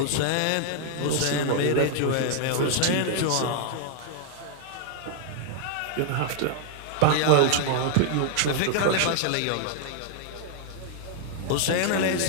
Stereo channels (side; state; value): both; different; correlation 0.00